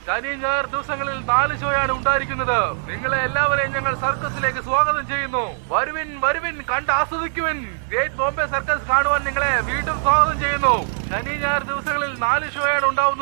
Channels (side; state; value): left; silent; digital silence